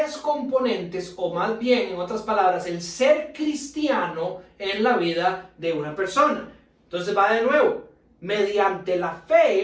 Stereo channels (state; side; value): identical; both; correlation 1.00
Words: componentes, o más bien, en otras palabras, el ser cristiano en la vida de una persona. Entonces va de nuevo, mediante la